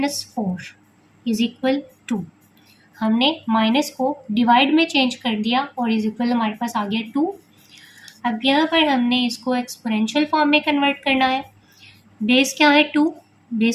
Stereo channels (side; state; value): both; identical; correlation 1.00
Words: 4 is equal 2। हमने माइनस को डिवाइड में चेंज कर दिया और इज इक्वल हमारे पास आ गया 2। अब यहाँ पर हमने इसको एक्सपोनेंशियल फॉर्म में कन्वर्ट करना है। बेस क्या है 2,